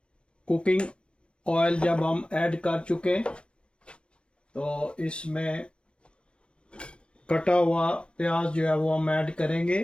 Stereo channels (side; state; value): right; late; 0.058 ms